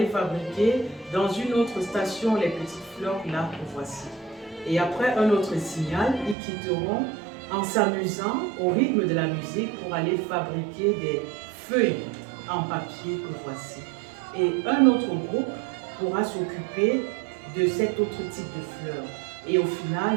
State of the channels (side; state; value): left; drops out; at 6.4 s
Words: fabriquer dans une autre station les petites fleurs là que voici. Et après un autre signal, ils quitteront en s'amusant au rythme de la musique pour aller fabriquer des feuilles en papier que voici. Et un autre groupe pourra s'occuper de cet autre type de fleurs. Et au